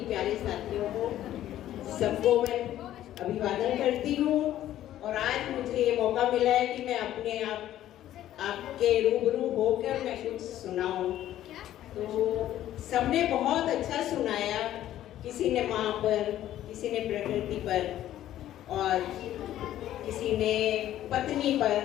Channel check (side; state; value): right; quieter; 12.7 dB